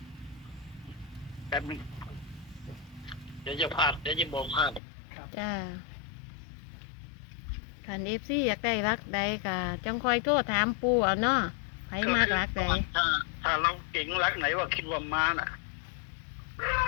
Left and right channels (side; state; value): right; drops out; at 4.8 s